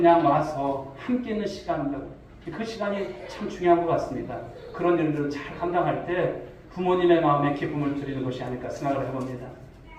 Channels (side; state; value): both; identical; correlation 1.00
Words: 와서 함께 있는 시간들. 그 시간이 참 중요한 것 같습니다. 그런 일들을 잘 감당할 때 부모님의 마음에 기쁨을 드리는 것이 아닐까 생각을 해봅니다.